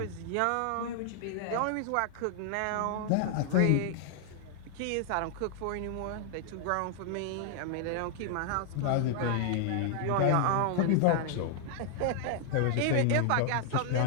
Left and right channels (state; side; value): different; both; correlation 0.00